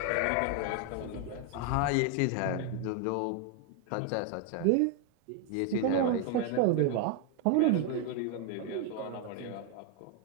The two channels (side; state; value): both; different; correlation 0.01